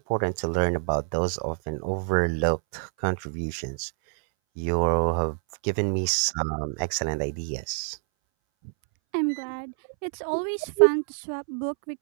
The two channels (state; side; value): silent; left; 60 dB below the other